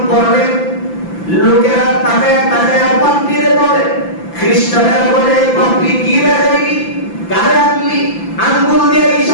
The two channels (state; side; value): late; right; 5.9 ms